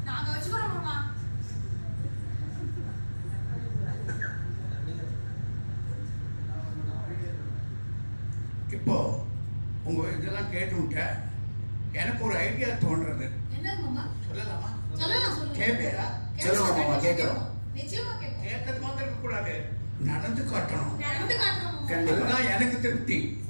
அம்மா. இப்போ உங்க இதெல்லாம் கேட்டு எனக்கு ஒரு ஐடியா தோன்றது. சொல்லலாமா? கேட்பேரா? சொல்லுங்க மாமா, கேட்கிறோம். கேட்கறது மாத்திரம் இருக்க கூடாது, நடந்து காட்டணும். கண்டிப்பா எனக்கு திருப்தி.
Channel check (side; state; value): both; inverted; correlation -1.00